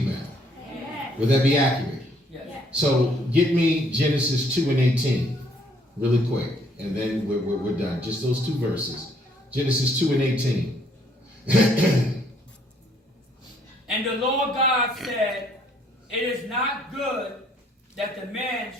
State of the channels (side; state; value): both; normal; correlation 0.65